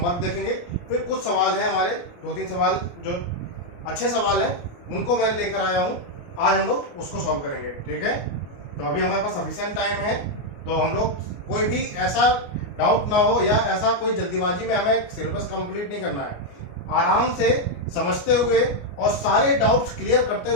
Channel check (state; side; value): late; right; 29 ms